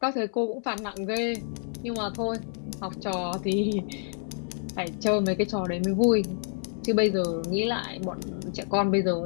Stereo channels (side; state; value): right; silent; digital silence